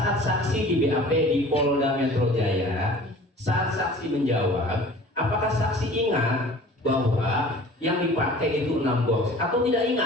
saksi di BAP di Polda Metro Jaya, saat saksi menjawab, apakah saksi ingat bahwa yang dipakai itu 6 box atau tidak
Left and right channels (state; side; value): normal; both; correlation 0.45